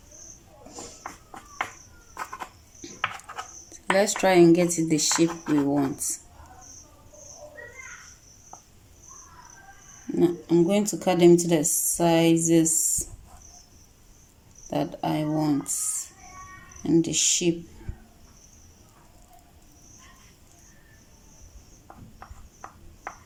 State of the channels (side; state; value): both; identical; correlation 1.00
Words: Let's try and get it the shape we want. Now, I'm going to cut them to the sizes that I want and the shape.